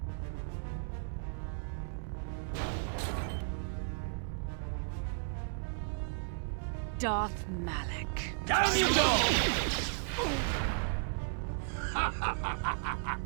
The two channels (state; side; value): silent; left; 55 dB below the other